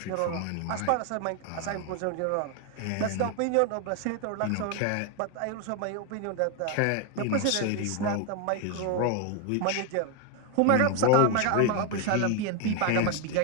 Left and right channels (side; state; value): both; different; correlation 0.01